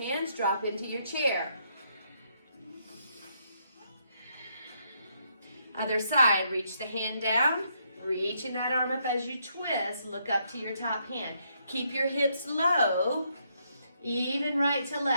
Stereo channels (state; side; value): inverted; both; correlation -0.75